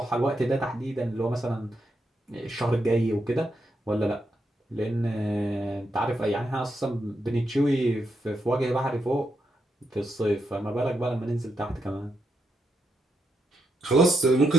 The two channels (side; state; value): both; normal; correlation 0.82